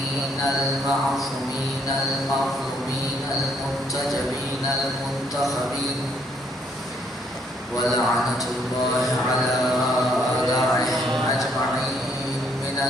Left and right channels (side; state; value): both; normal; correlation 0.68